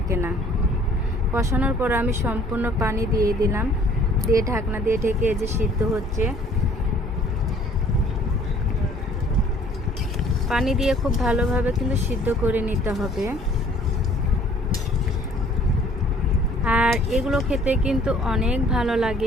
না। কষানোর পর আমি সম্পূর্ণ পানি দিয়ে দিলাম, দিয়ে ঢাকনা দিয়ে ঢেকে যে সিদ্ধ হচ্ছে। পানি দিয়ে খুব ভালোভাবে কিন্তু সিদ্ধ করে নিতে হবে। আর এগুলো খেতে কিন্তু অনেক ভালো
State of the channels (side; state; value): both; normal; correlation 0.56